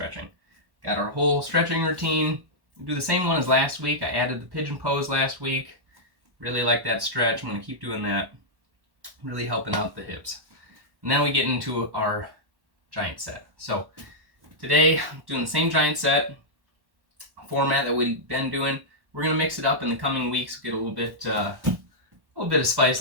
Got our whole stretching routine. We'll do the same one as last week. I added the pigeon pose last week. Really like that stretch. I'm going to keep doing that. Really helping out the hips. And then we get into our giant set. So today, I'm doing the same giant set format that we've been doing. We're going to mix it up in the coming weeks, get a little bit of spice,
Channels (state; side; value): late; left; 1.1 ms